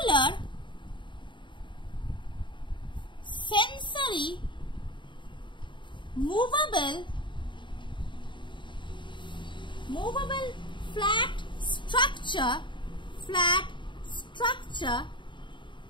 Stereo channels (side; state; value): right; late; 0.23 ms